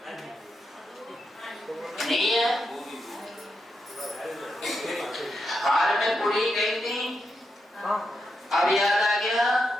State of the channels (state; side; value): normal; both; correlation 0.85